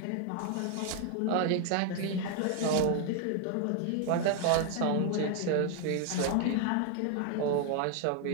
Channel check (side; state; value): both; different; correlation 0.01